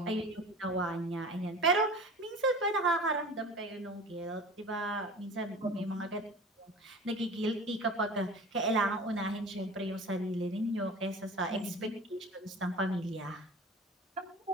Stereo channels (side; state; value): both; normal; correlation 0.38